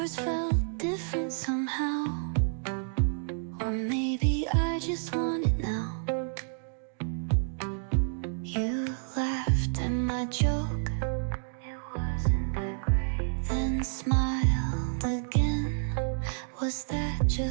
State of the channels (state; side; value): silent; left; digital silence